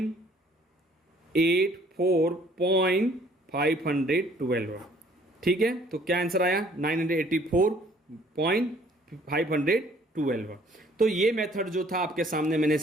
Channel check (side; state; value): both; normal; correlation 0.59